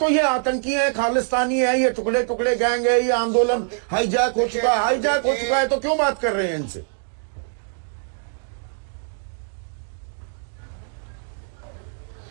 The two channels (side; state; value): left; silent; 63 dB below the other